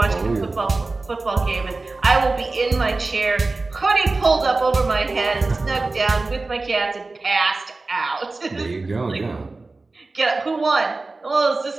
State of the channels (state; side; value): quieter; left; 3.5 dB